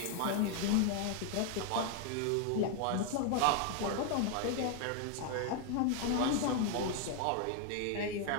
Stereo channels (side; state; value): both; different; correlation 0.01